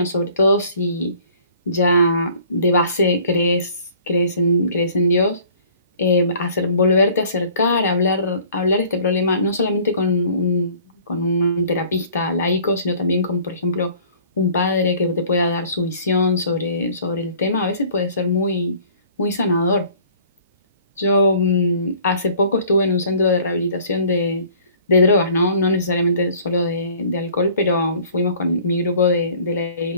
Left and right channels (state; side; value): inverted; both; correlation -0.53